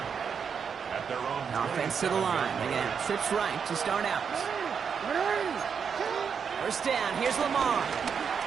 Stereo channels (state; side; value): quieter; left; 6.7 dB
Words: at their own Offense to the line. They're going to have trips right to start out. First down. Here's Lamar.